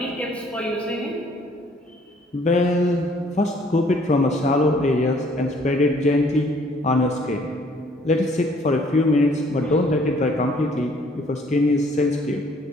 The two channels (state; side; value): normal; both; correlation 0.61